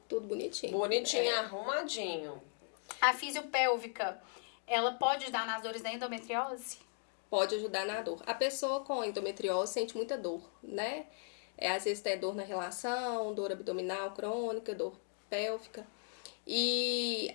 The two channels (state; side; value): silent; right; 53 dB below the other